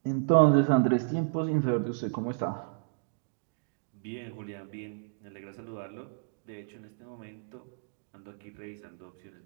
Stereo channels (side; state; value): left; silent; digital silence